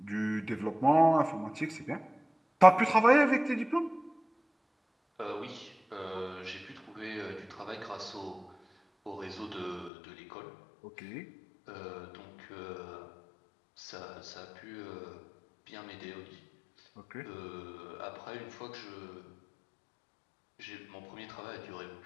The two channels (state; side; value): drops out; right; at 9.9 s